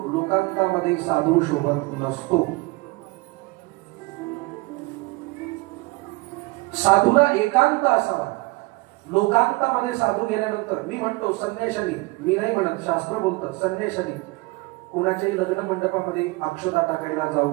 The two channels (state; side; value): quieter; left; 23.6 dB